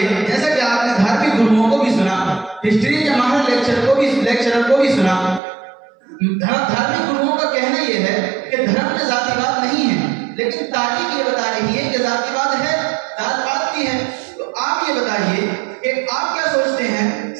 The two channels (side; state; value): left; drops out; at 5.4 s